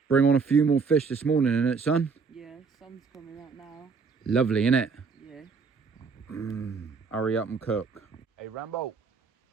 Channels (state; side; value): quieter; left; 5.0 dB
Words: Bring on a few more fish this morning, innit, son? Yeah, sun's coming out now. Lovely, innit? Yeah. Hurry up and cook. Hey, Rambo.